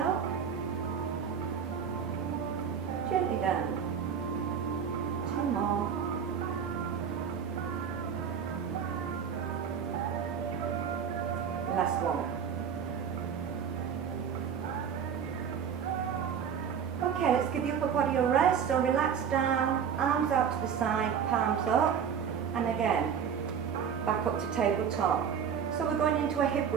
gently down. 2 more. Last one. Okay, let's give the upper body a rest. So relax down, arms out to the side, palms up, and again, back up to tabletop. So we're going into a hip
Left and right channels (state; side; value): quieter; left; 7.5 dB